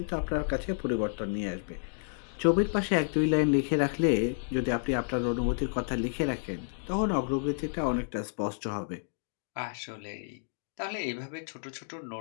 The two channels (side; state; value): right; silent; digital silence